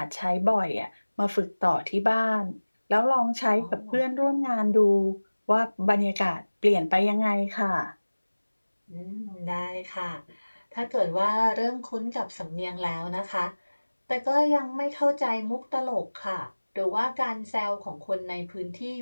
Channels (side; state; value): both; inverted; correlation -1.00